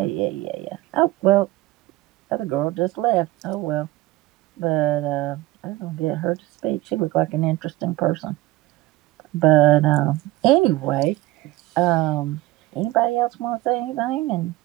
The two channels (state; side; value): quieter; left; 17.7 dB